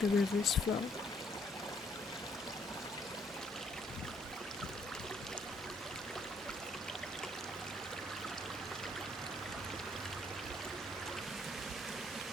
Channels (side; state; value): both; normal; correlation 0.67